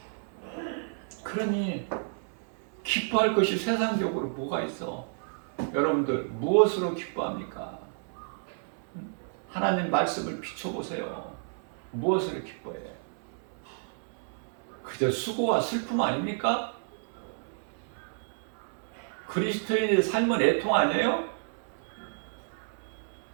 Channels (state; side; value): silent; left; 57 dB below the other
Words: 그러니 기뻐할 것이 세상적으로 뭐가 있어? 여러분들 무엇으로 기뻐합니까? 하나님 말씀을 비춰보세요. 무엇으로 기뻐해? 그저 수고와 슬픔 아닙니까? 그리스도인의 삶은 애통 아니에요?